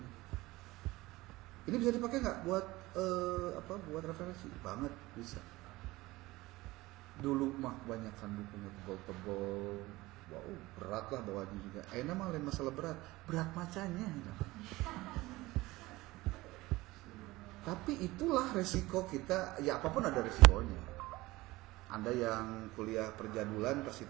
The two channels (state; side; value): quieter; left; 19.6 dB